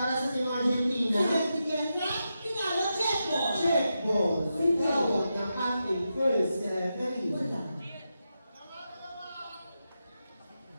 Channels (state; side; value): inverted; both; correlation -0.88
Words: sa Team Argentina. Sinag ni Kendra. Pinalo, check ball. Check ball. Tawag ng ating first referee. Wala.